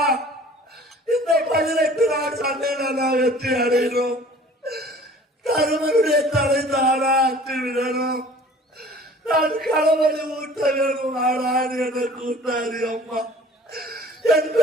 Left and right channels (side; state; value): both; normal; correlation 0.48